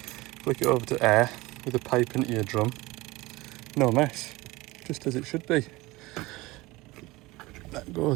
flick it over to air with a pipe into your drum. No mess, just as it should be. That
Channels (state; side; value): quieter; left; 21.0 dB